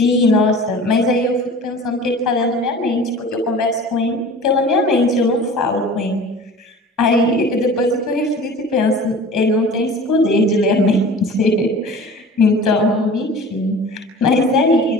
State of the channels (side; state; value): both; normal; correlation 0.41